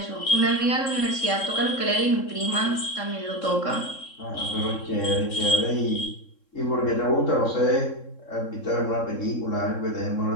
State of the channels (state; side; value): late; right; 3.7 ms